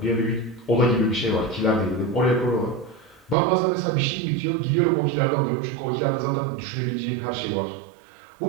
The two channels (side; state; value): left; drops out; at 3.4 s